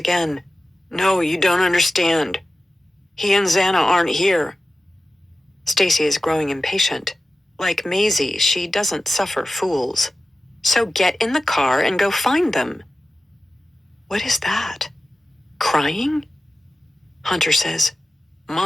"No, you don't understand. He and Xana aren't here." Stacy is growing impatient. Like Maisie, she doesn't suffer fools. So get in the car and go find them. What is that? Crying? Hunter says,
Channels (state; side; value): normal; both; correlation 0.94